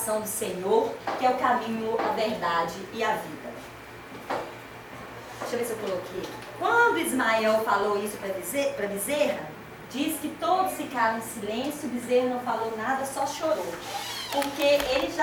do Senhor, que é o caminho, a verdade e a vida. Deixa eu ver se eu coloquei. Quando Ismael falou isso para Bezerra, diz que todos ficaram em silêncio, Bezerra não falou nada, só chorou. Porque ele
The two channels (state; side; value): identical; both; correlation 1.00